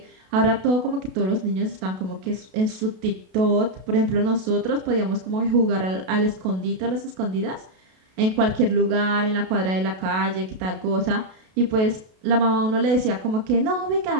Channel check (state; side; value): late; left; 32 ms